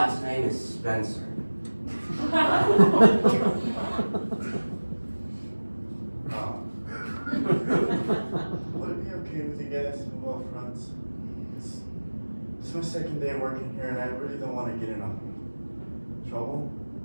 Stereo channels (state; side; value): inverted; both; correlation -1.00